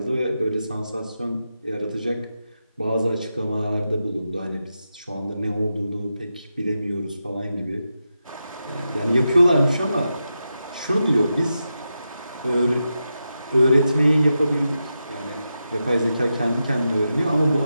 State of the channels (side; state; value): both; inverted; correlation -0.88